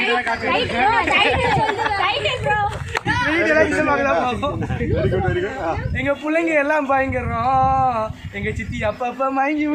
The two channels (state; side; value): identical; both; correlation 1.00